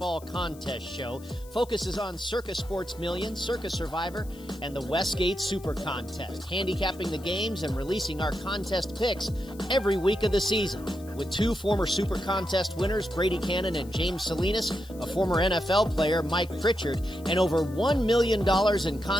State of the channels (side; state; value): left; noise; hiss, 23 dB below the sound